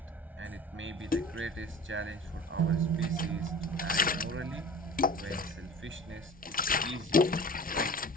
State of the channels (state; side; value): normal; both; correlation 0.40